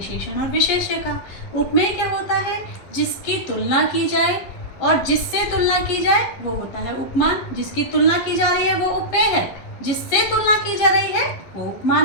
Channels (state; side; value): late; right; 11 ms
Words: और विशेष्य का। उपमेय क्या होता है? जिसकी तुलना की जाए, और जिससे तुलना की जाए वो होता है उपमान। जिसकी तुलना की जा रही है वो उपमेय है, जिससे तुलना की जा रही है वो